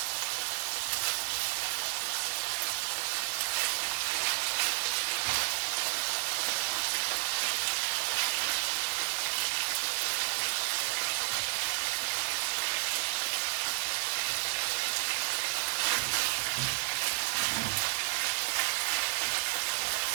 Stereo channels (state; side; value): silent; left; 57 dB below the other